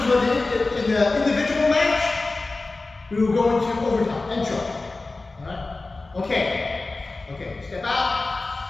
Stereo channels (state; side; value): quieter; right; 3.4 dB